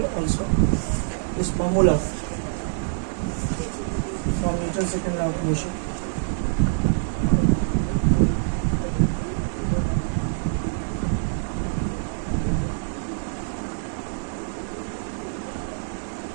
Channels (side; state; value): left; silent; digital silence